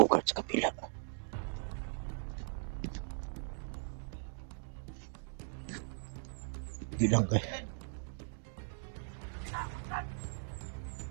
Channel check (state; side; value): silent; left; digital silence